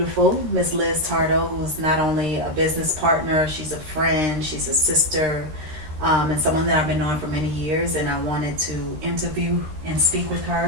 Miss Liz Tardo, who's not only a business partner, she's a friend, she's a sister, and someone that I've been knowing for many years. And I wanted to interview and speak with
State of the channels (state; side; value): late; left; 13 ms